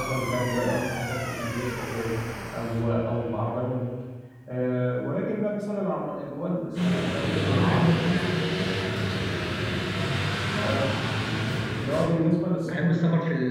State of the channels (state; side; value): identical; both; correlation 1.00